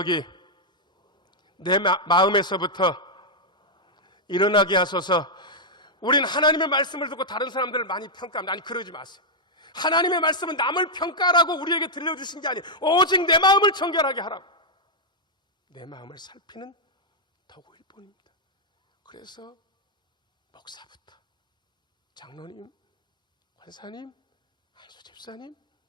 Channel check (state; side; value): normal; both; correlation -0.04